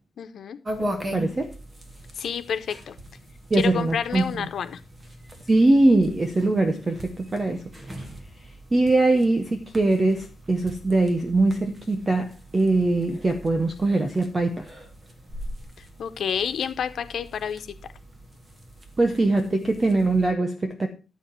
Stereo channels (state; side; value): normal; both; correlation 0.91